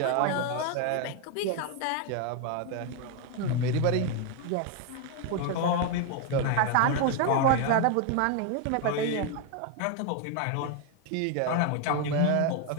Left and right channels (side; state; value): both; different; correlation 0.01